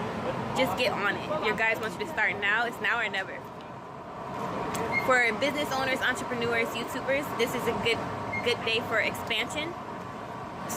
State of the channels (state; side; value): identical; both; correlation 1.00